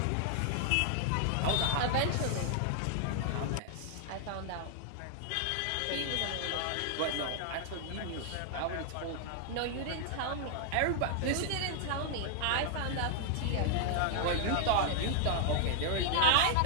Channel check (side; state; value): both; different; correlation -0.01